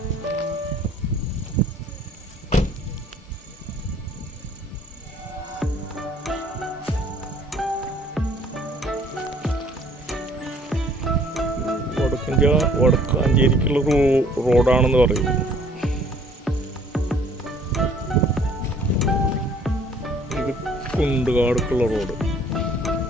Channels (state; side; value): normal; both; correlation 0.57